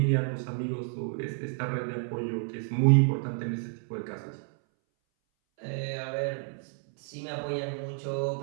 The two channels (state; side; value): silent; left; 58 dB below the other